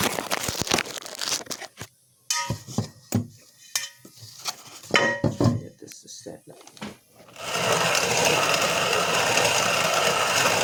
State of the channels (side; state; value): both; identical; correlation 1.00